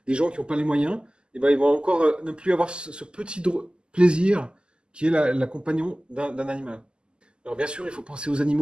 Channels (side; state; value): left; late; 0.049 ms